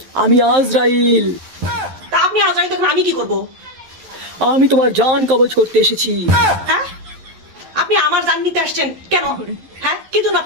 আমি আজরাইল। তা আপনি আজরাইল তখন আমি কি করব? আমি তোমার জান কবজ করতে এসেছি। হ্যাঁ, আপনি আমার জান নিতে আসছেন কেন? হ্যাঁ, কি জন্য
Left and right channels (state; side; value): late; left; 11 ms